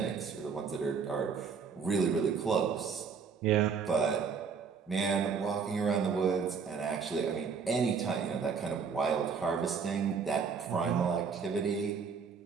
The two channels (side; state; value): left; quieter; 5.9 dB